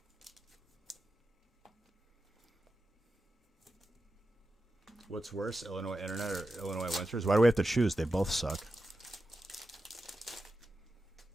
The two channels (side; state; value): both; normal; correlation 0.91